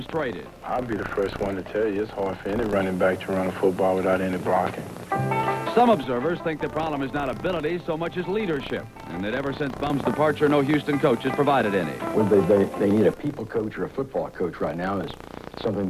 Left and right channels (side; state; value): both; identical; correlation 1.00